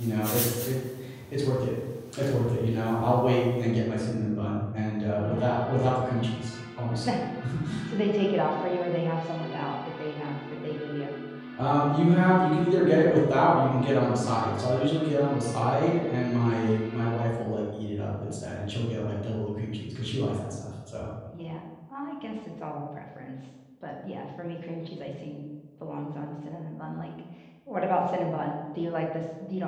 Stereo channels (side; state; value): both; identical; correlation 1.00